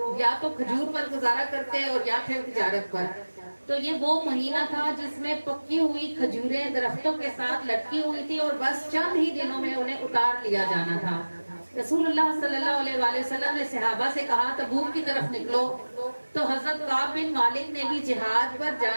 یا تو کھجور پر گزارا کرتے اور یا پھر تجارت پر، تو یہ وہ مہینہ تھا جس میں پکی ہوئی کھجوریں درختوں کے ساتھ لٹکی ہوئی تھی اور بس چند ہی دنوں میں انہیں اتار لیا جانا تھا۔ رسول اللہ صلی اللہ علیہ وآلہ وسلم نے صحابہ سے کہا تبوک کی طرف نکلو، تو حضرت کعب بن مالک نے بھی جہاد پر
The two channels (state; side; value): inverted; both; correlation -1.00